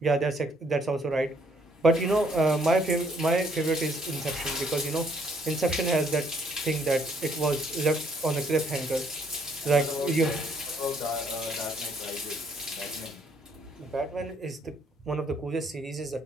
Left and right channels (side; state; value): both; normal; correlation 0.67